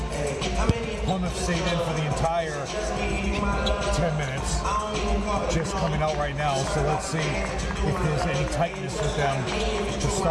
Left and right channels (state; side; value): identical; both; correlation 1.00